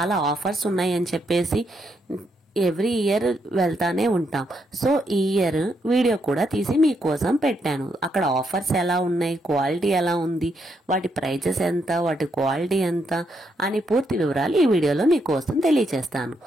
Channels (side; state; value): both; normal; correlation 0.78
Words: ఆఫర్స్ ఉన్నాయని చెప్పేసి ఎవ్రీ ఇయర్ వెళ్తానే ఉంటాం. సో ఈ ఇయర్ వీడియో కూడా తీసి మీకోసం పెట్టాను. అక్కడ ఆఫర్స్ ఎలా ఉన్నాయి, క్వాలిటీ ఎలా ఉంది, వాటి ప్రైజెస్ ఎంత, వాటి క్వాలిటీ ఎంత అని పూర్తి వివరాలు ఈ వీడియోలో మీకోసం తెలియచేస్తాను.